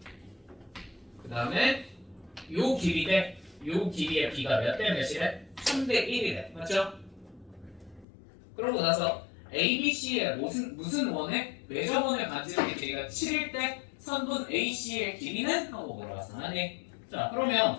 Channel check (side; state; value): right; drops out; at 8.1 s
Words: 그 다음에 요 길이 요 길이의 B가 몇 대 몇이래? 3대 1이래. 맞죠? 그러고 나서 ABC의 무슨 원에 외접원의 반지름의 길이가 7일 때 선분 AC의 길이는? 하고 물어봤어. 아니. 자, 그러면